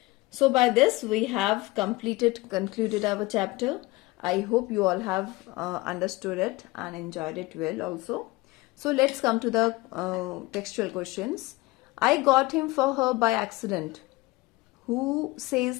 So by this we have concluded our chapter. I hope you all have understood it and enjoyed it well also. So let's come to the textual questions. I got him for her by accident. Who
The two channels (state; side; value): quieter; right; 21.6 dB